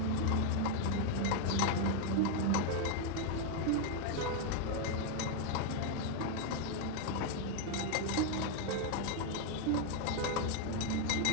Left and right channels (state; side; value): different; both; correlation 0.00